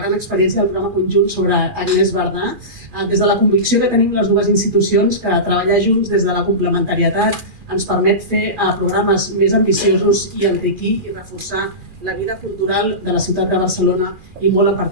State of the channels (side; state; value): left; late; 2.4 ms